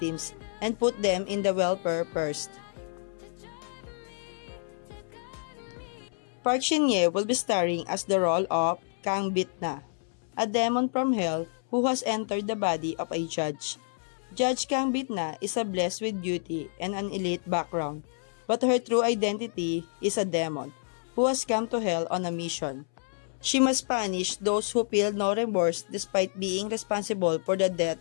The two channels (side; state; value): right; silent; 59 dB below the other